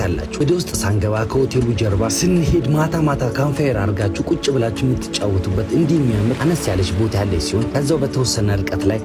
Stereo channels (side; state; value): both; identical; correlation 1.00